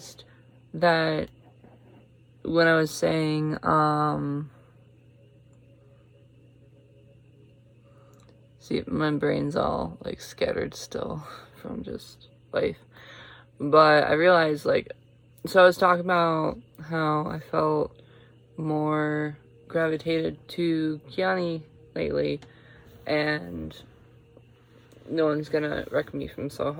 that when I was saying see, my brain's all like scattered still from just life, but I realized, like, so I was talking about how I felt more gravitated to Kiani lately, and no one's gonna wreck me from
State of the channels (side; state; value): both; identical; correlation 1.00